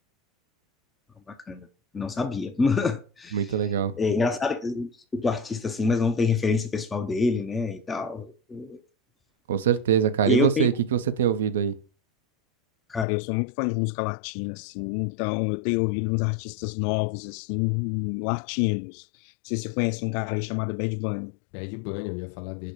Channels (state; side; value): drops out; right; at 13.1 s